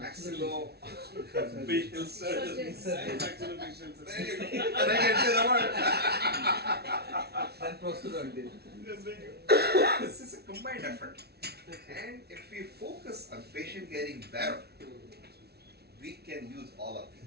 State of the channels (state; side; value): late; left; 0.47 ms